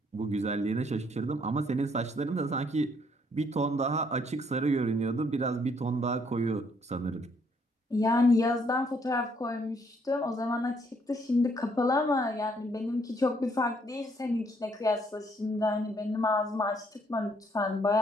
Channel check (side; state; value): both; normal; correlation 0.68